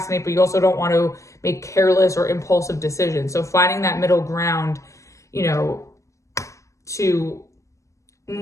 but you also don't want to make careless or impulsive decisions. So finding that middle ground, you know, to,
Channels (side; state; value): right; late; 0.15 ms